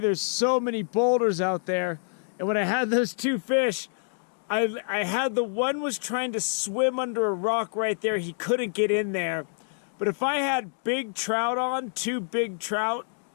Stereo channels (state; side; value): silent; right; digital silence